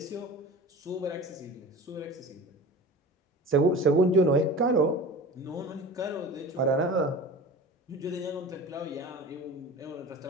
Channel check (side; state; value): both; normal; correlation 0.36